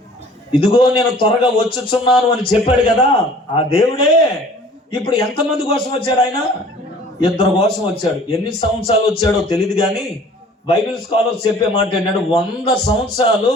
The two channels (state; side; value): normal; both; correlation 0.50